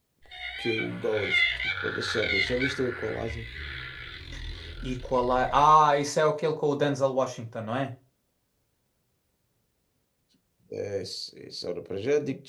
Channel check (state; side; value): identical; both; correlation 1.00